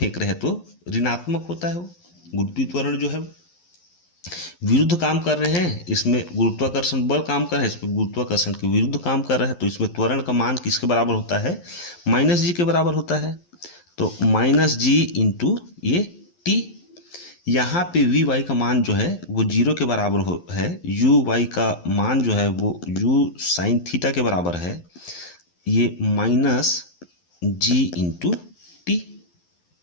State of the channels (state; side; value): late; right; 11 ms